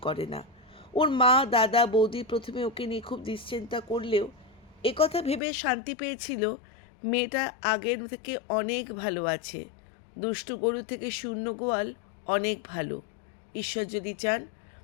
করে না। ওর মা দাদা বৌদি প্রথমে ওকে নিয়ে খুব দুশ্চিন্তা করলেও একথা ভেবে শান্তি পেয়েছিল, মেয়েটা আগের থেকে অনেক ভালো আছে। দুষ্টু গরু থেকে শূন্য গোয়াল অনেক ভালো। ঈশ্বর যদি চান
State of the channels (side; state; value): right; drops out; at 5.4 s